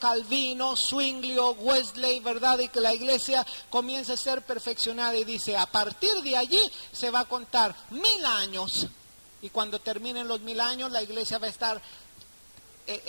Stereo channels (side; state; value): both; inverted; correlation -1.00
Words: Zwinglio, Wesley, ¿verdad? Y que la iglesia comienza a ser perfeccionada y dice, a partir de allí se va a contar 1000 años. Y cuando terminen los 1000 años, la iglesia va a estar,